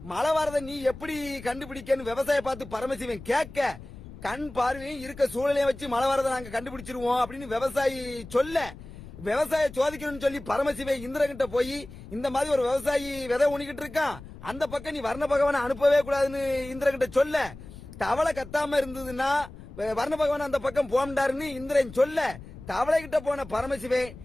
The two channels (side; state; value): left; noise; rumble, 16 dB below the sound